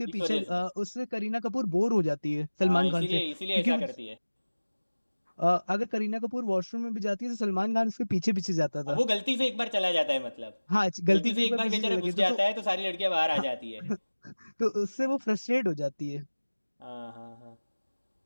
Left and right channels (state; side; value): inverted; both; correlation -1.00